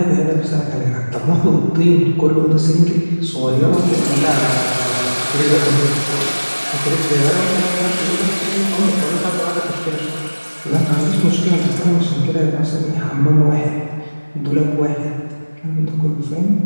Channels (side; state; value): both; inverted; correlation -1.00